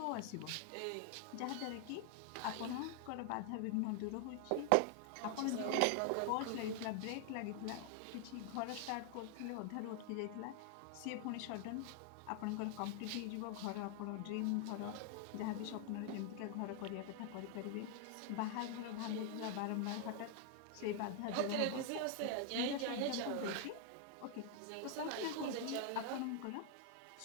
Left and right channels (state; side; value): different; both; correlation 0.00